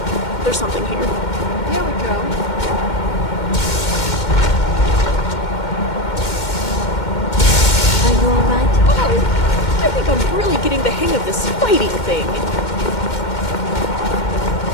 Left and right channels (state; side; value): late; right; 2.1 ms